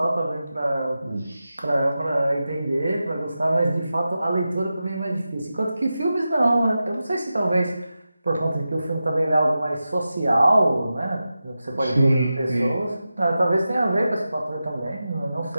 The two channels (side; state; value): both; inverted; correlation -0.92